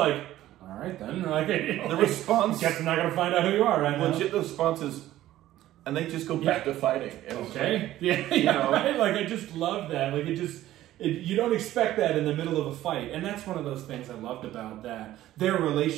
all right then. Like the response. Guess I'm not gonna find out who you are right now. Legit, the response is, and they just go back to fighting. Okay. Yeah. Right. Like I just love that. Like you don't expect that in the middle of a fight. And that's one of those things I loved about that. Their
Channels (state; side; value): quieter; left; 14.2 dB